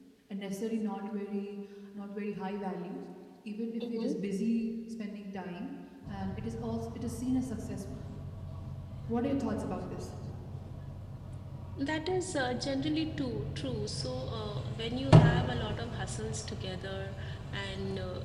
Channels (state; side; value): identical; both; correlation 1.00